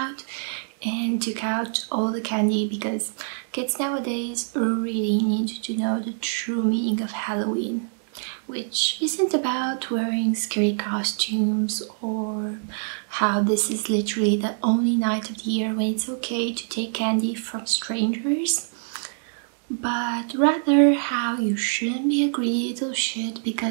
and took out all the candy because kids nowadays really need to know the true meaning of Halloween, which isn't about wearing scary costumes or how this is literally the only night of the year when it's okay to take candy from strangers, but rather how you shouldn't be a greedy little shit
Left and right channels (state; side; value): silent; left; digital silence